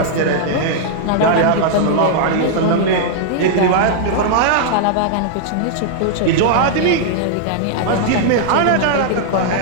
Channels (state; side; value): different; both; correlation -0.01